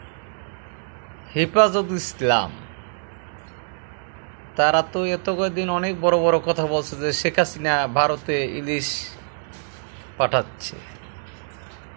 হেফাজত ইসলাম তারা তো এত কয়েকদিন অনেক বড় বড় কথা বলছে যে শেখ হাসিনা ভারতে ইলিশ পাঠাচ্ছে,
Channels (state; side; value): silent; left; digital silence